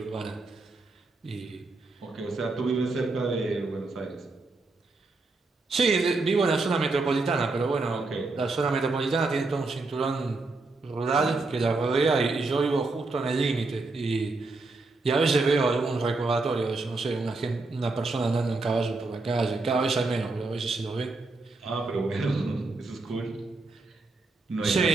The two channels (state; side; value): quieter; left; 3.5 dB